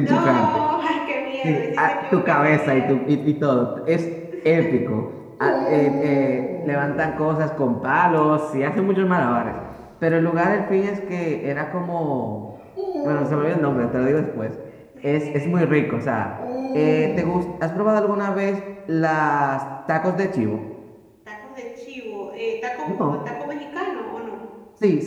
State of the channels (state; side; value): identical; both; correlation 1.00